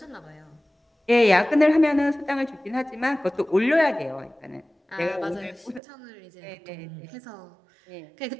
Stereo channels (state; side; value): drops out; left; at 5.8 s